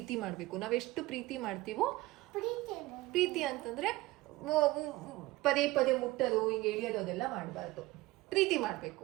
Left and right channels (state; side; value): quieter; left; 19.2 dB